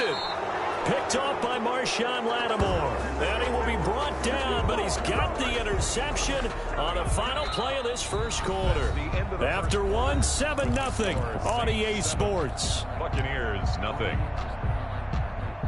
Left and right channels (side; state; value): both; identical; correlation 1.00